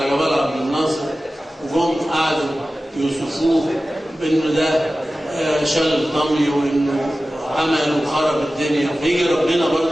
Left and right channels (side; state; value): both; normal; correlation 0.95